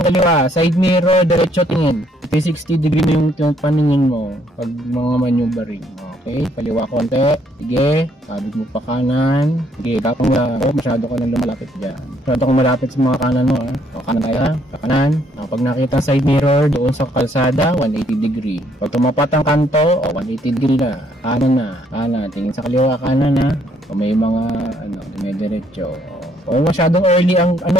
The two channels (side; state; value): both; normal; correlation 0.68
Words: kaliwa, side mirror, diretso tingin. 360 degree mo yung paningin mo pag mga maneuvering. Okay, kaliwa konti. Sige, kabig mo pa kanan. Sige, gapang na. Masyado ka nang lumalapit dyan. Masyado kang malapit sa mga kanan mo. Kanan tayo, ha? Kanan. Pag nakita side mirror doon sa kalsada, 180 degree. Pag tumapat ang kanto, 180 degree na. Kanan. Tingin sa kaliwa, kanan, ha? May mga, dumidiretso. Masyadong early ang,